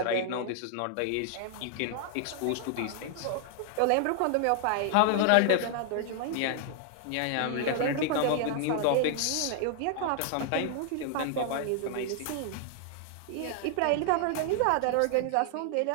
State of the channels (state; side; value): different; both; correlation 0.00